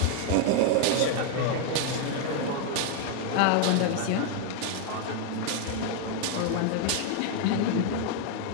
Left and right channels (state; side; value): different; both; correlation 0.00